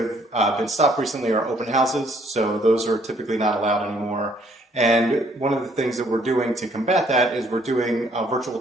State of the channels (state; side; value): normal; both; correlation 0.64